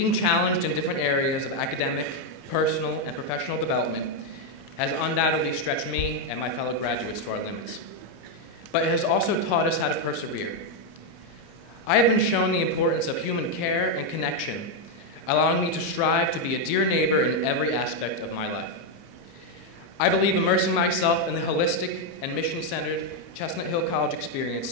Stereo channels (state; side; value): late; right; 30 ms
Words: challenged in different areas of academic, personal, and professional development has undoubtedly stretched me and my fellow graduates to our limits, but it has also taught us how to persevere. I have been shown the importance of human care and connection, allowing me to strive to be a dear neighbor in every aspect of my life. I believe immersing myself in the holistic and mission-centered Chestnut Hill College